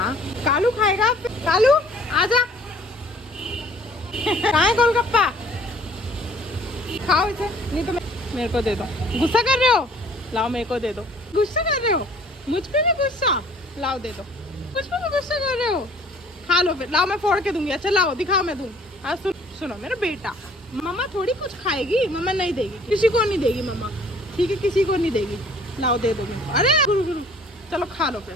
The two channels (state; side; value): normal; both; correlation 0.55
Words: कालू खाएगा। कालू आजा, कहाँ है गोलगप्पा? खाओ इसे, नहीं तो मेरे को दे दो। गुस्सा कर रहे हो? लाओ मेरे को दे दो। गुस्सा कर रहे हो? मुझ पे भी गुस्सा? लाओ दे दो। मुझ पे भी गुस्सा कर रहे हो? खा लो फिर। लाओ मैं फोड़ के दूंगी। अच्छा लाओ, दिखाओ, मैं दूँ। आज सुनो मेरा बेटा, मम्मा थोड़ी कुछ खाएगी, मम्मा नहीं देगी, किसी को नहीं देगी मम्मा, ठीक है? किसी को नहीं देगी। लाओ दे दो मेरे को। अरे गुरु गुरु, चलो खा लो फिर,